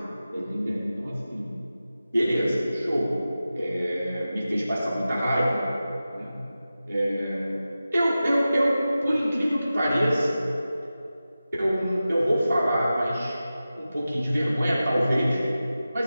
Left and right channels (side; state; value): both; inverted; correlation -0.94